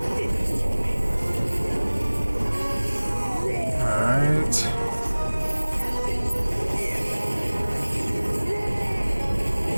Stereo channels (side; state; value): both; inverted; correlation -1.00